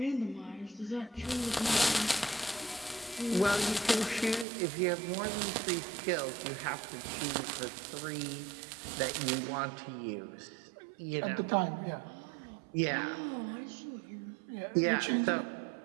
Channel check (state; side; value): drops out; left; at 4.5 s